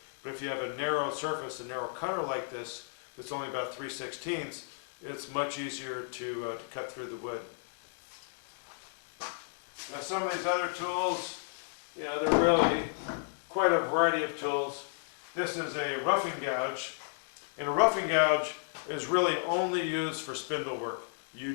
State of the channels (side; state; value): right; silent; digital silence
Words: But if you have a narrow surface, a narrow cutter like this, that's only about 3/16, it's much easier to cut through the wood. Now some of these other tools, you know, they're really quite a variety of tools. This is a roughing gouge, and a roughing gouge is really only used for spindle work. You